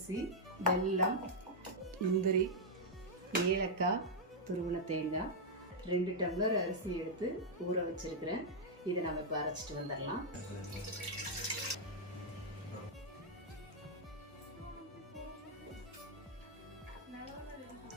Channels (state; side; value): normal; both; correlation -0.04